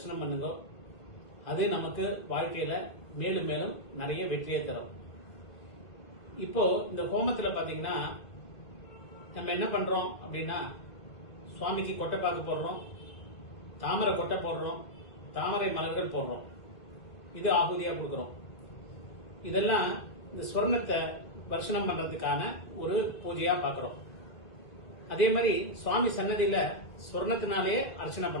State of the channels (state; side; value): late; right; 2.0 ms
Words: பண்ணுங்க. அது நமக்கு வாழ்க்கையில மேலும் மேலும் நிறைய வெற்றியை தரும். இப்போ இந்த ஹோமத்துல பாத்தீங்கன்னா நம்ம என்ன பண்றோம் அப்படின்னா, சுவாமிக்கு கொட்டைப்பாக்கு போடுறோம், தாமரை கொட்டை போடுறோம், தாமரை மலர்கள் போடுறோம். இது ஆகுதியா கொடுக்கிறோம். இதெல்லாம் இந்த ஸ்வர்ணத்தை தரிசனம் பண்றதுக்கான ஒரு பூஜையா பாக்குறோம். அதே மாதிரி சுவாமி சன்னதியில ஸ்வர்ணத்தினாலே அர்ச்சனை